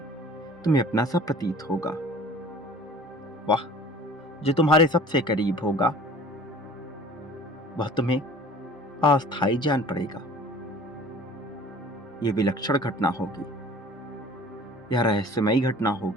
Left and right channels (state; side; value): normal; both; correlation 0.46